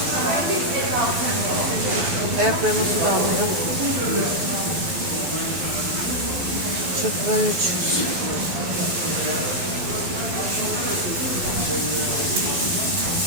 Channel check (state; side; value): late; left; 12 ms